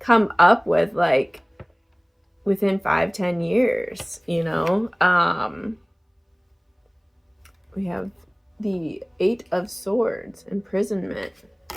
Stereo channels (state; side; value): identical; both; correlation 1.00